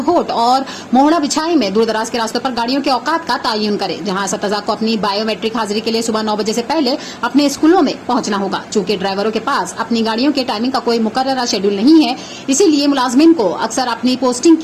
और मोहड़ा बिछाई में दूर दराज के रास्तों पर गाड़ियों के औकात का तयन करे, जहां असतज़ा को अपनी बायोमेट्रिक हाजिरी के लिए सुबह 9 बजे से पहले अपने स्कूलों में पहुंचना होगा। चूंकि ड्राइवरों के पास अपनी गाड़ियों के टाइमिंग का कोई मुकर्रर शेड्यूल नहीं है, इसीलिए मुलाजमिन को अक्सर अपनी पोस्टिंग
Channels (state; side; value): identical; both; correlation 1.00